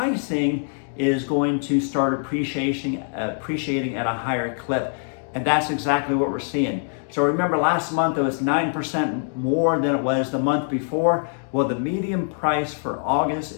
is going to start appreciating at a higher clip. And that's exactly what we're seeing. So remember, last month it was 9% more than it was the month before. Well, the median price for August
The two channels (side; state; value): right; silent; digital silence